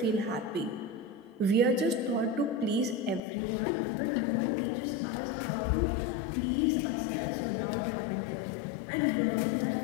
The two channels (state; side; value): drops out; right; at 3.2 s